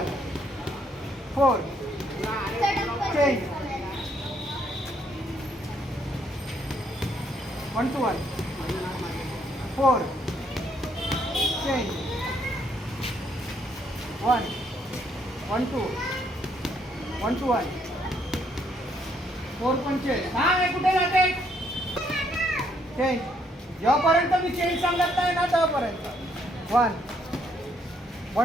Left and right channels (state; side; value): normal; both; correlation 0.70